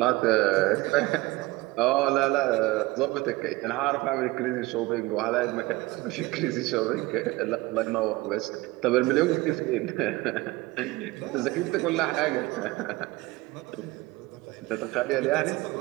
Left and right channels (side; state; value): left; quieter; 20.5 dB